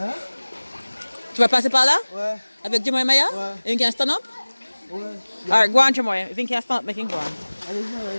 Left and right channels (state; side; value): inverted; both; correlation -1.00